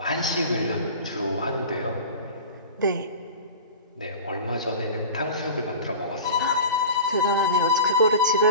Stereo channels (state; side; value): inverted; both; correlation -0.35